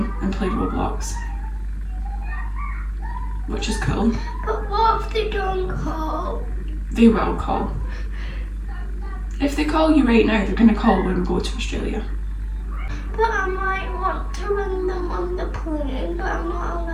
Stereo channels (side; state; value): both; identical; correlation 1.00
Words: and play Roblox, which is cool. But what if they don't call? They will call. If they call you right now, they're going to call when we go to Australia. But I might want to ring them on the plane, but I'm not